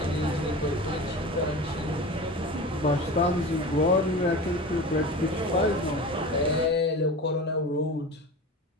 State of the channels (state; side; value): normal; both; correlation 0.32